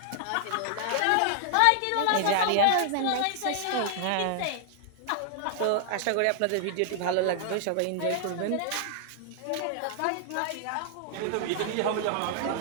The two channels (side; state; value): both; different; correlation 0.00